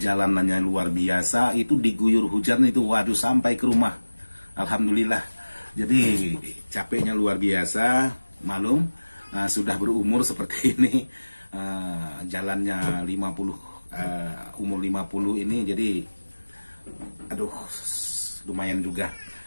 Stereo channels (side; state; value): both; inverted; correlation -1.00